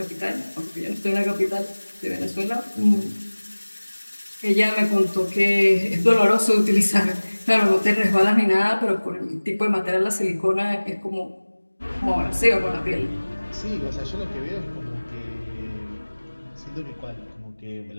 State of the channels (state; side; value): inverted; both; correlation -1.00